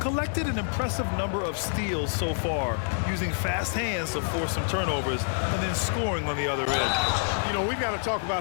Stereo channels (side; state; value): right; silent; digital silence